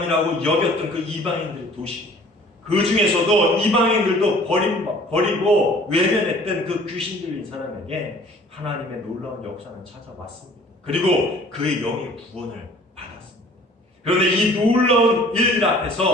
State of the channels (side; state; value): both; normal; correlation 0.51